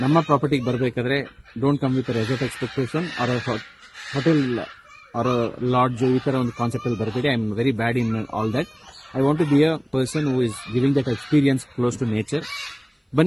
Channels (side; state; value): both; identical; correlation 1.00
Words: ನಮ್ಮ ಪ್ರಾಪರ್ಟಿಗೆ ಬರಬೇಕಾದ್ರೆ don't come with resort expectation or hotel or lodge ಈ ಥರ ಒಂದು ಕಾನ್ಸೆಪ್ಟಲ್ಲಿ ಬರಬೇಡಿ. I am very bad in all that. I want to be a person who is giving that experience close to nature.